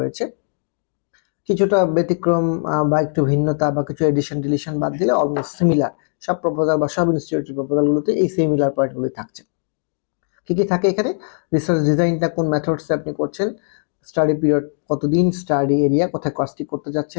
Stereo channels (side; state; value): right; silent; 64 dB below the other